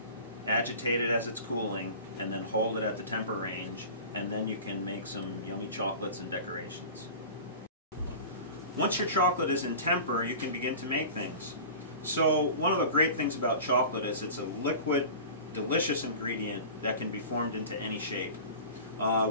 agitate it as it's cooling, and then hold it at the temper range, and then you can make some yummy chocolates and decorations. Once your chocolate is in temper, you can begin to make things. So one of the great things about chocolate is it's a liquid, delicious ingredient that can be formed into any shape.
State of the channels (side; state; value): both; inverted; correlation -0.37